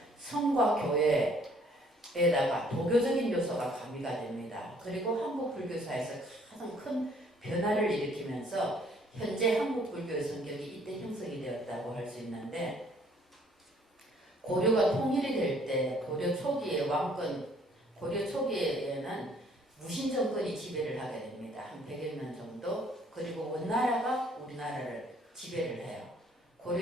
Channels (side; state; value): both; normal; correlation 0.61